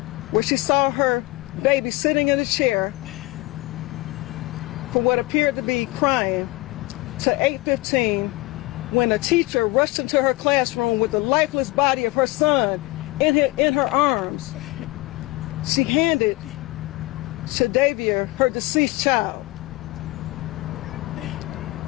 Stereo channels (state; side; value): quieter; right; 21.0 dB